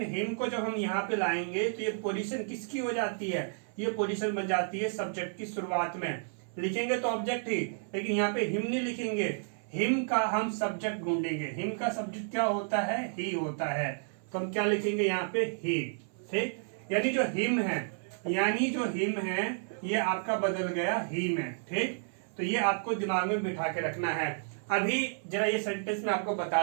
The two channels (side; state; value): left; silent; 57 dB below the other